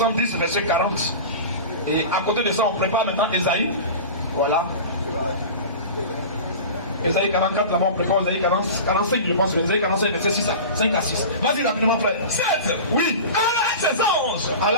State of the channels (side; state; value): both; inverted; correlation -0.33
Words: verset 40. Et à côté de ça, on prépare maintenant Esaïe. Voilà. Esaïe 44, là-bas, on prépare Esaïe 45, je pense. Esaïe 45, verset 6 à 5 à 6. Vas-y rapidement, frère. 7. Oui. Allah et ses anges.